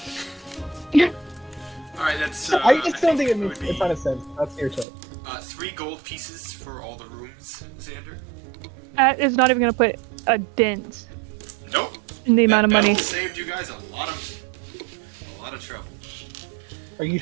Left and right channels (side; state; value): left; drops out; at 4.9 s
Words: Alright, that's. I just don't think it would makes be, a ton of sense. That's your choice. 3 gold pieces for all the rooms, Xander. That is not even gonna put a dent Nope. in the amount of That money. battle saved you guys a lot of trouble. Are you